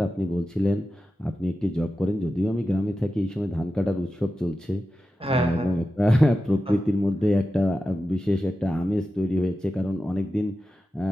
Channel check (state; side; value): normal; both; correlation 0.92